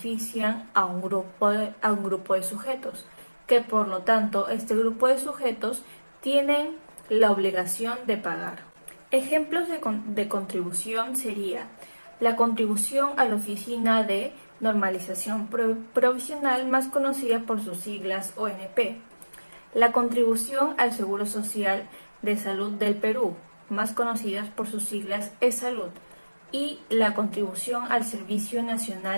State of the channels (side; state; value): both; inverted; correlation -1.00